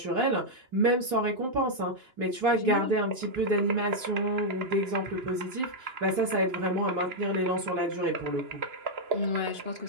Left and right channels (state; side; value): late; left; 2.9 ms